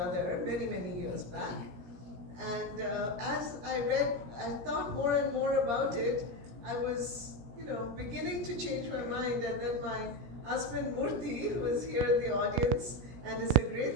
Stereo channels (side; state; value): left; late; 17 ms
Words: many, many years back. And as I read, I thought more and more about it. I was beginning to change my mind, and then my husband Murthy, who is here in the audience and is a